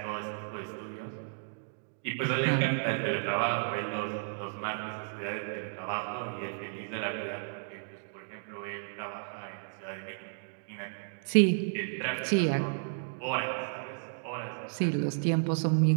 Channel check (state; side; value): silent; left; digital silence